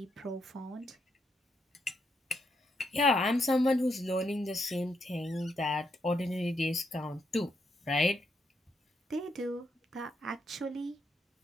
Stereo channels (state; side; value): normal; both; correlation 0.79